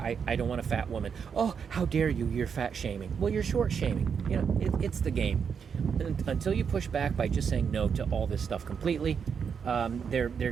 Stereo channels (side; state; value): left; quieter; 6.7 dB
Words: don't want a fat woman. Oh, how dare you? You're fat shaming. Well, you're short shaming. It's the game. Until you push back by just saying no to all this stuff completely, they're